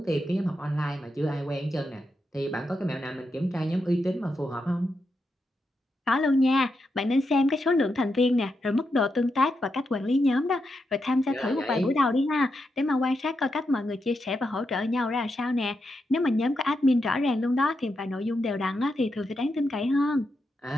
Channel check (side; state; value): both; normal; correlation 0.85